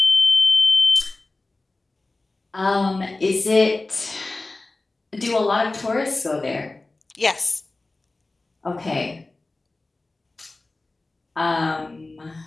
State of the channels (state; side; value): quieter; right; 3.1 dB